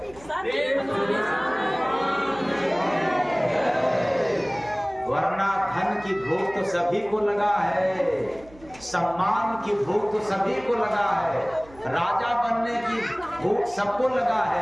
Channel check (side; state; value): right; noise; hum, 23 dB below the sound